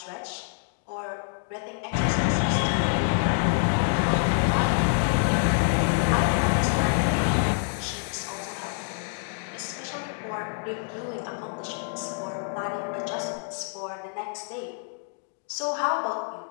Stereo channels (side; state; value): right; silent; 60 dB below the other